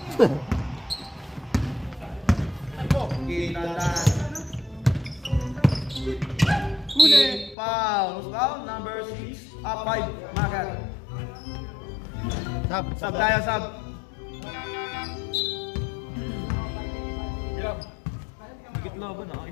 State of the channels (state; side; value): drops out; right; at 7.6 s